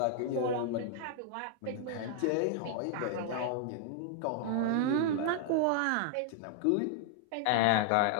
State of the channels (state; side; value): different; both; correlation 0.00